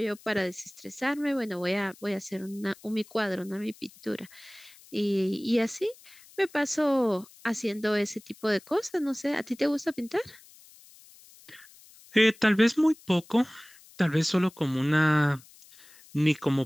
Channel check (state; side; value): noise; left; hiss, 24 dB below the sound